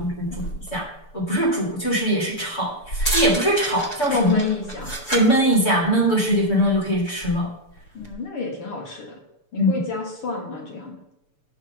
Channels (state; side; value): late; right; 6.8 ms